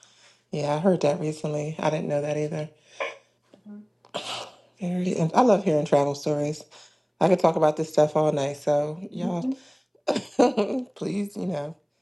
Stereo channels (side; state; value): both; identical; correlation 1.00